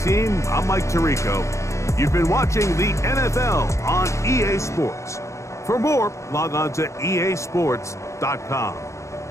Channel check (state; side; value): late; right; 0.14 ms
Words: team. I'm Mike Tirico. You've been watching the NFL on EA Sports. For more, log on to easports.com.